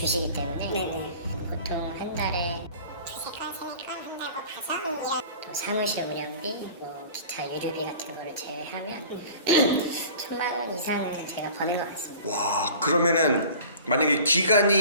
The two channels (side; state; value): both; inverted; correlation -0.43